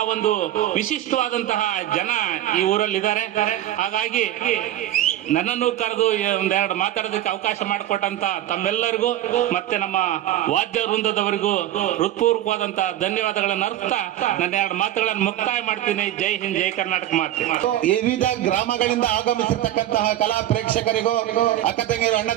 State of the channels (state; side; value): quieter; left; 13.0 dB